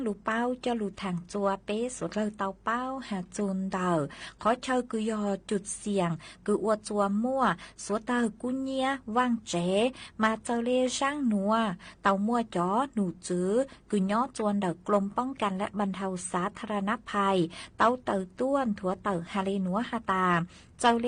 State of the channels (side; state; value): both; identical; correlation 1.00